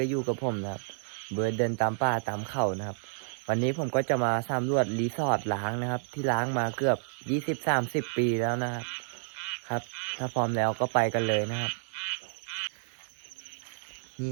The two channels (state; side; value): silent; left; digital silence